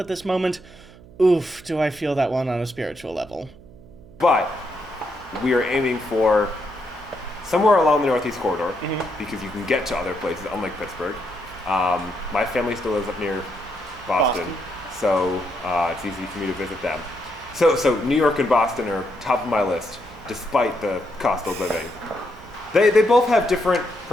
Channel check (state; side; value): noise; right; hum, 21 dB below the sound